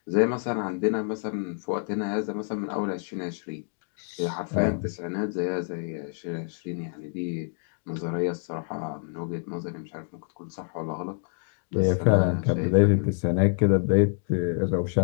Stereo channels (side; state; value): right; silent; 60 dB below the other